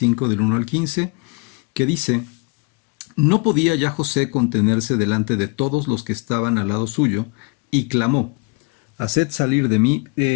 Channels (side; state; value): right; quieter; 30.1 dB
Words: del 1 al 15, que dice: No podía ya José contenerse delante de todos los que estaban al lado suyo, y clamó: Haced salir de